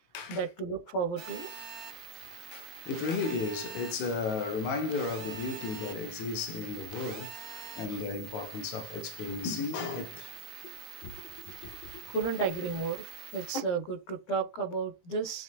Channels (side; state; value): right; late; 18 ms